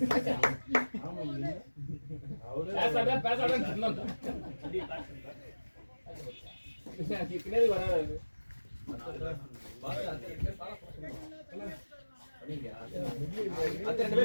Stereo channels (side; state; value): both; inverted; correlation -1.00